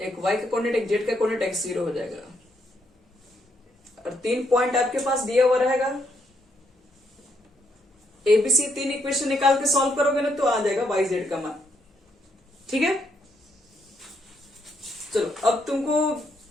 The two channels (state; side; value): normal; both; correlation 0.75